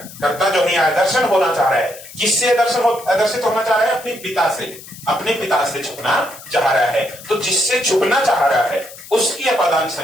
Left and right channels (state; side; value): noise; left; hiss, 17 dB below the sound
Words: कर्ता जो है आदर्शन होना चाह रहा है, किससे आदर्शित होना चाह रहा है? अपने पिता से, अपने पिता से छुपना चाह रहा है। तो जिससे छुपना चाह रहा है उसकी अपादान